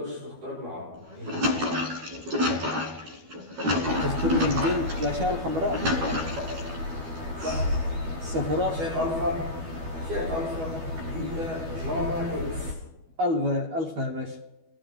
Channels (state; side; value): late; left; 12 ms